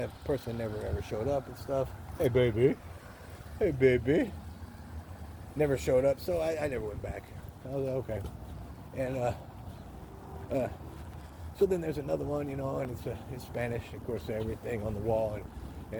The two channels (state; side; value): identical; both; correlation 1.00